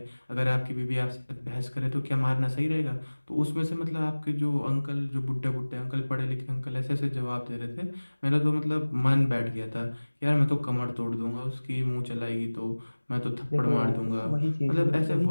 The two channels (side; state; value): both; inverted; correlation -1.00